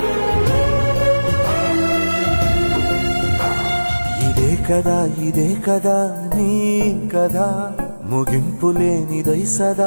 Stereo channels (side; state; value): both; inverted; correlation -1.00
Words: ఇదే కదా నీ కథ ముగింపులేనిదై